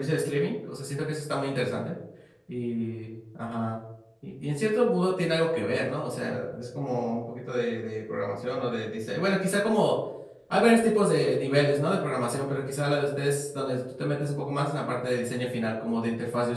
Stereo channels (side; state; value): both; identical; correlation 1.00